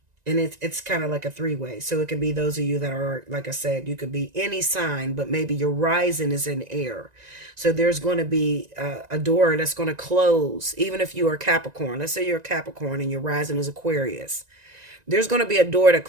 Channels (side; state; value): left; late; 1.9 ms